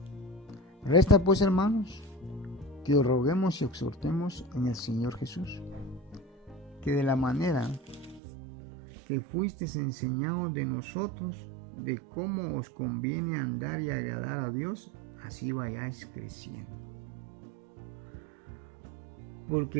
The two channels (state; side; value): drops out; left; at 8.2 s